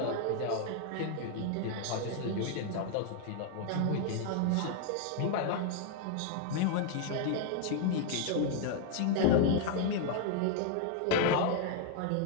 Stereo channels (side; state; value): both; different; correlation 0.00